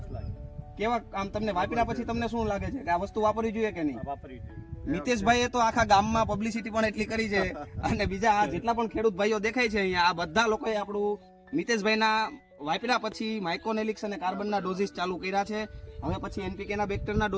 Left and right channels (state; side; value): identical; both; correlation 1.00